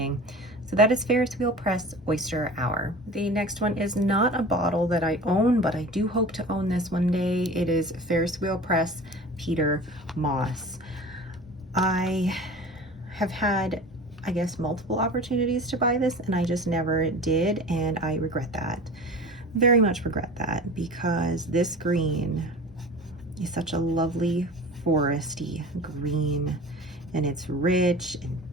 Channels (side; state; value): both; normal; correlation 0.38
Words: So that is Ferris Wheel Press Oyster Hour. The next one is not a bottle that I own, but I do hope to own this one day. It is Ferris Wheel Press Peter Moss. I have had, I guess, multiple opportunities to buy this, and I just never did, and I regret that. Very much regret that, because this green is such a lovely foresty green, and it's rich and